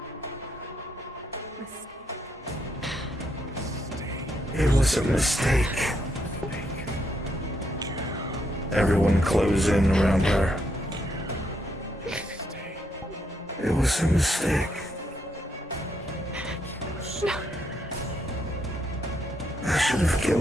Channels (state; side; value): normal; both; correlation 0.77